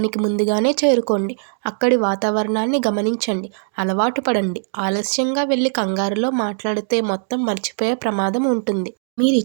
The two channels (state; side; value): silent; left; digital silence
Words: ముందుగానే చేరుకోండి. అక్కడి వాతావరణాన్ని గమనించండి. అలవాటు పడండి. ఆలస్యంగా వెళ్ళి కంగారులో మాట్లాడితే మొత్తం మర్చిపోయే ప్రమాదం ఉంటుంది.